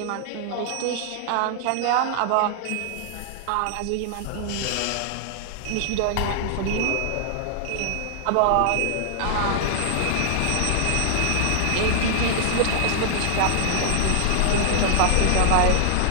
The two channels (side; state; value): both; different; correlation 0.00